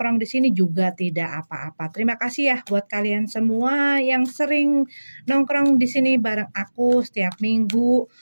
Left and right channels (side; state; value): both; inverted; correlation -1.00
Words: di sini juga tidak apa-apa. Terima kasih ya buat kalian semua yang sering nongkrong di sini bareng aku setiap minggu.